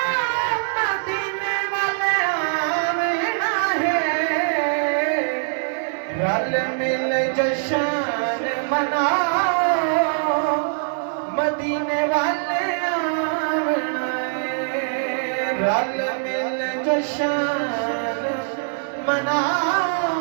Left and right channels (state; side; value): silent; left; digital silence